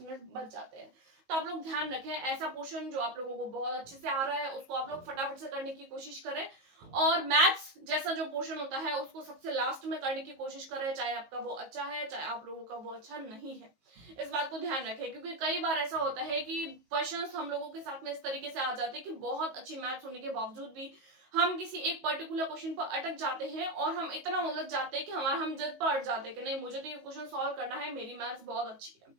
मिनट बच जाते हैं। तो आप लोग ध्यान रखें, ऐसा पोर्शन जो आप लोगों को बहुत अच्छे से आ रहा है उसको आप लोग फटाफट से करने की कोशिश करें, और मैथ्स जैसा जो पोर्शन होता है उसको सबसे लास्ट में करने की कोशिश करें, चाहे आपका वो अच्छा है चाहे आप लोगों का वो अच्छा नहीं है। इस बात को ध्यान रखें, क्योंकि कई बार ऐसा होता है कि क्वेश्चंस हम लोगों के साथ में इस तरीके से आ जाते हैं कि बहुत अच्छी मैथ्स होने के बावजूद भी हम किसी एक पर्टिकुलर क्वेश्चन पर अटक जाते हैं और हम इतना उलझ जाते हैं कि हम जिद पर अट जाते हैं कि नहीं, मुझे तो ये क्वेश्चन सॉल्व करना है, मेरी मैथ्स बहुत अच्छी है।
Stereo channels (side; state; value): left; late; 19 ms